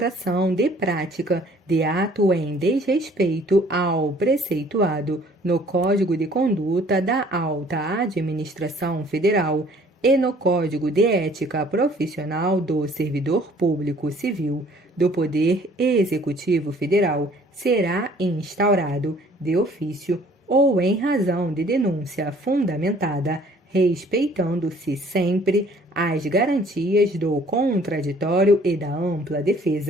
de prática de ato em desrespeito ao preceituado no Código de Conduta da Alta Administração Federal e no Código de Ética Profissional do Servidor Público Civil do Poder Executivo Federal será instaurado de ofício ou em razão de denúncia fundamentada, respeitando-se sempre as garantias do contraditório e da ampla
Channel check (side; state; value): both; normal; correlation 0.56